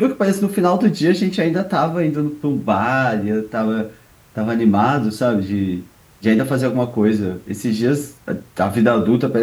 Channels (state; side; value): identical; both; correlation 1.00